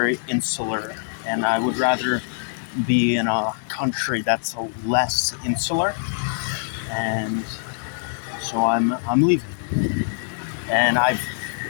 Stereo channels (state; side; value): silent; right; 62 dB below the other